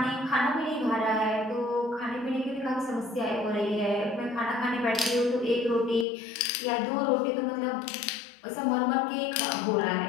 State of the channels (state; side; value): drops out; right; at 6.1 s